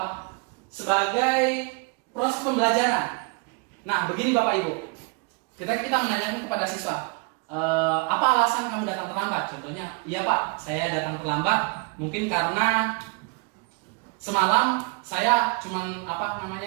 proses pembelajaran. Nah, begini Bapak Ibu, kita menanyakan kepada siswa, apa alasan kamu datang terlambat? Contohnya, iya Pak, saya datang terlambat mungkin karena semalam saya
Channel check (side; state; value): left; quieter; 31.6 dB